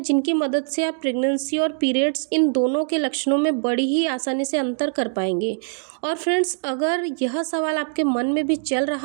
जिनकी मदद से आप प्रेगनेंसी और पीरियड्स इन दोनों के लक्षणों में बड़ी ही आसानी से अंतर कर पाएंगे। और फ्रेंड्स, अगर यह सवाल आपके मन में भी चल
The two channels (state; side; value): silent; left; 62 dB below the other